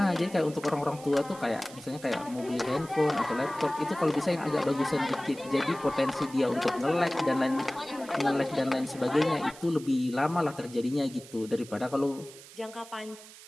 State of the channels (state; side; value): noise; right; hiss, 18 dB below the sound